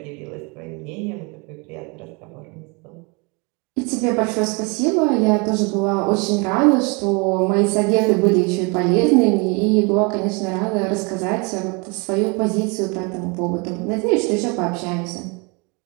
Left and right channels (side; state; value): left; quieter; 30.5 dB